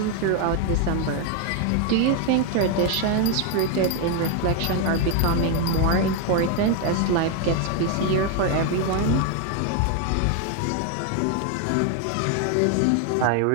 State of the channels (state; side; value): different; both; correlation 0.01